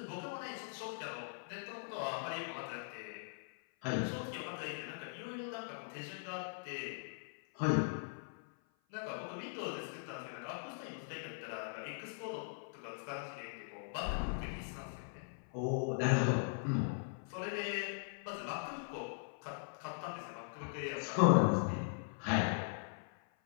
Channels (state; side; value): silent; right; 51 dB below the other